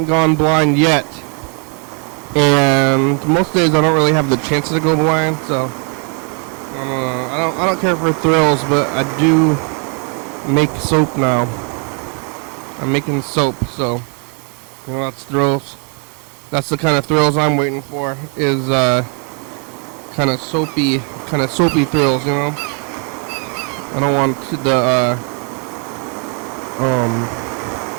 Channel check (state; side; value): quieter; left; 37.1 dB